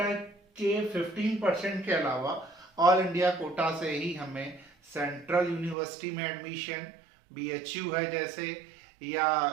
के 15% के अलावा ऑल इंडिया कोटा से ही हमें सेंट्रल यूनिवर्सिटी में एडमिशन, बीएचयू है जैसे,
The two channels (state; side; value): drops out; left; at 5.8 s